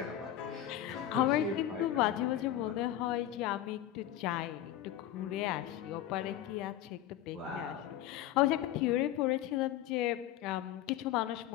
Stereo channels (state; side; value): quieter; right; 12.1 dB